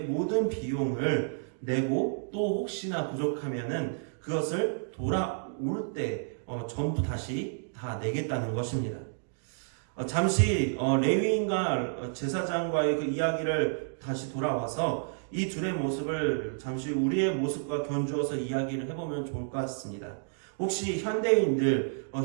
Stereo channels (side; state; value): left; silent; digital silence